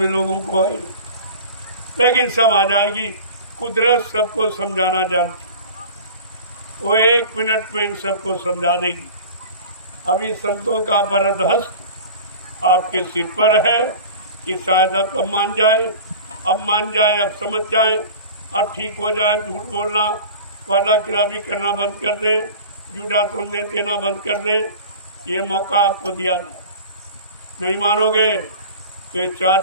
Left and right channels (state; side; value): inverted; both; correlation -0.37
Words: लोगों को आई, लेकिन सब आ जाएगी। कुदरत सबको समझाना जानती, वो 1 मिनट में इन सबको समझा देगी। अभी संतों का वरद हस्त आपके सिर पर है कि शायद अब मान जाए, अब समझ जाए, अब ठीक हो जाए। झूठ बोलना, वादा खिलाफी करना बंद कर दे, झूठा संदेश देना बंद कर दे। ये मौका आपको दिया, नहीं मानोगे तो ये